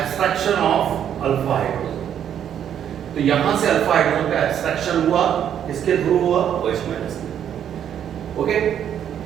of alpha hydrogen. तो यहां से अल्फा हाइड्रोजन का एब्स्ट्रैक्शन हुआ, किसके थ्रू हुआ, OH माइनस में। ओके,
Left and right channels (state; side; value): quieter; left; 9.4 dB